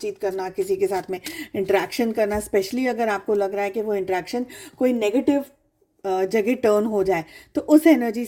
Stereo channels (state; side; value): identical; both; correlation 1.00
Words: करना, किसी के साथ में इंटरेक्शन करना, स्पेशली अगर आपको लग रहा है कि वो इंटरेक्शन कोई नेगेटिव जगह टर्न हो जाए, तो उस एनर्जी